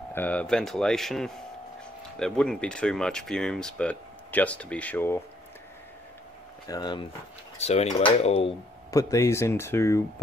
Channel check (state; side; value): normal; both; correlation 0.68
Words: ventilation. There wouldn't be too much fumes, but just to be sure. So anyway, I'll put these into